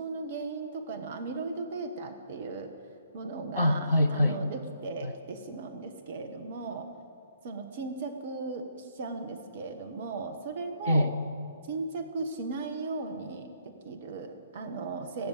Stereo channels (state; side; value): inverted; both; correlation -0.70